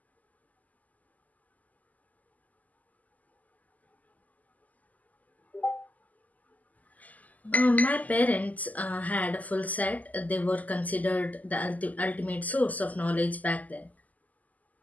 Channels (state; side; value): late; right; 0.078 ms